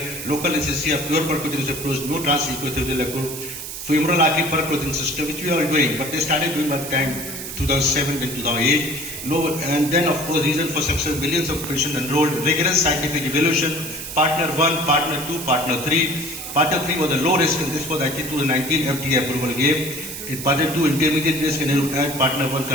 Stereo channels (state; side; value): noise; right; hiss, 8 dB below the sound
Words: Local anesthesia, pure percutaneous approach, no transequithelial femoral artery percutaneous system, which we are doing. But they started doing by the time 2007 and 2008. No, and then of course reason for success, millions of patients enrolled, rigorous scientific evaluation, partner 1, partner 2, partner 3. Partner 3 was a low risk and this was actually 2019 FDA approval gave. In partner 2 intermediate risk and partner 1